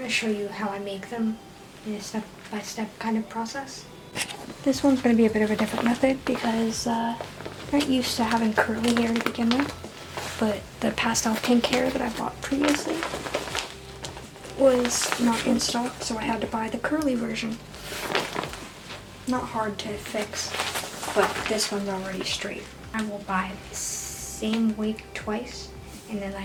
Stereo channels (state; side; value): identical; both; correlation 1.00